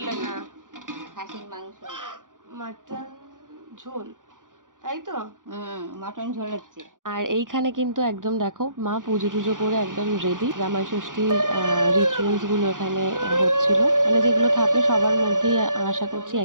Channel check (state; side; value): late; left; 0.88 ms